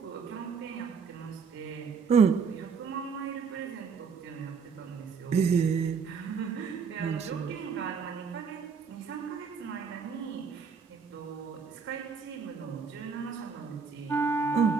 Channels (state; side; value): quieter; left; 5.8 dB